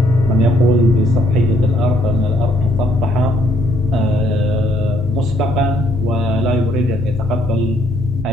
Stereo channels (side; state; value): both; normal; correlation 0.68